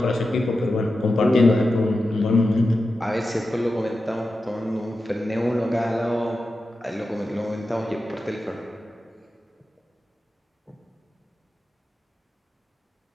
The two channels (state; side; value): normal; both; correlation 0.91